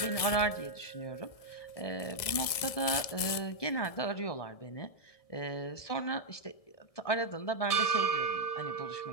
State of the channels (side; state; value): right; late; 1.7 ms